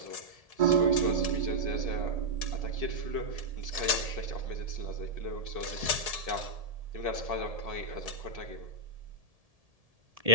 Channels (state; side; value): late; left; 1.7 ms